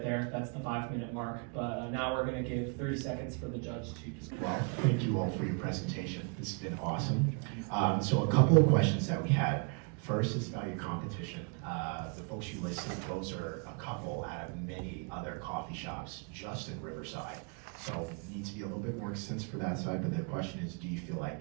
there. That's the 5-minute mark. But now we're going to give 30 seconds for the judge to just Well, thank you all for your presentation. This has been awesome. So a couple of questions that we had. First is about your competition. The folks you listed, those are a couple out of many other coffee shops just in Riverside. So it needs to be a little bit more extensive for that side, but the question is, do you feel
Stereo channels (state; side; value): quieter; left; 36.7 dB